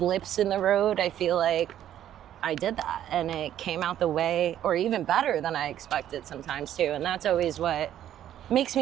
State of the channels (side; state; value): left; quieter; 11.3 dB